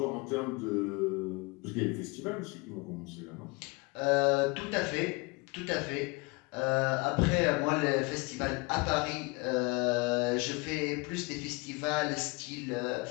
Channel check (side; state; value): right; quieter; 27.2 dB